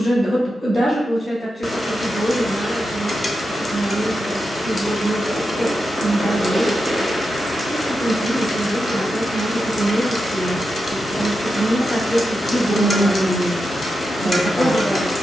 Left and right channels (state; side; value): normal; both; correlation 0.88